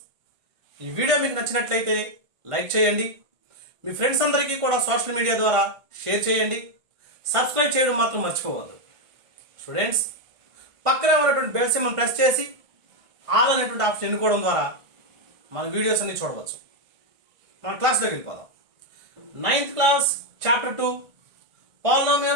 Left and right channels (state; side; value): late; left; 1.5 ms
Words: ఈ video మీకు నచ్చినట్లయితే లైక్ చేయండి, మీ ఫ్రెండ్స్ అందరికీ కూడా సోషల్ మీడియా ద్వారా షేర్ చేయండి, సబ్స్క్రైబ్ చేయడం మాత్రం మర్చిపోవద్దు. స్టూడెంట్స్, పక్కన ఉన్నటువంటి బెల్ సింబల్ ప్రెస్ చేసి ఆల్ అనేటువంటి ఆప్షన్ ఎన్నుకోవడం ద్వారా మన వీడియోస్ అన్ని చూడవచ్చు. మన క్లాస్లోకి వెళ్ళిపోదాం. 9th class chapter 2